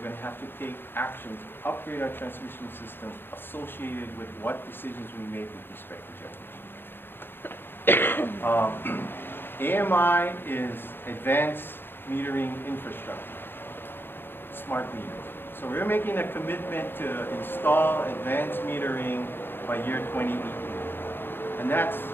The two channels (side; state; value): right; late; 0.10 ms